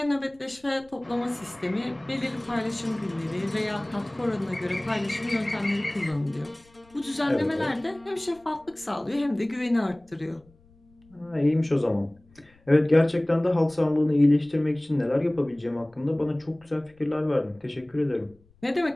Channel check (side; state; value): left; noise; rumble, 30 dB below the sound